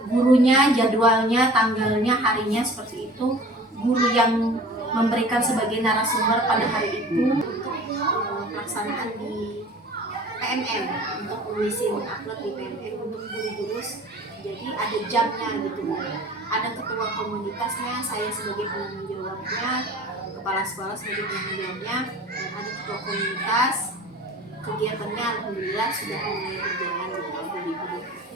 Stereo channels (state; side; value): normal; both; correlation 0.44